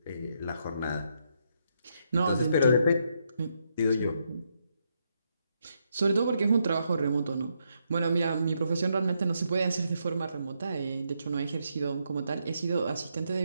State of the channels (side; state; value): both; inverted; correlation -0.79